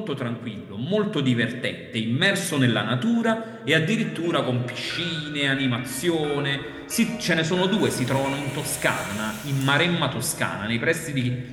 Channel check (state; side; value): identical; both; correlation 1.00